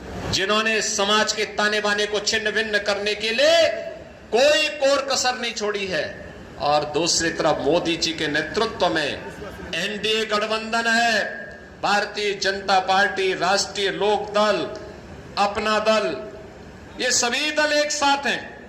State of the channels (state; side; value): identical; both; correlation 1.00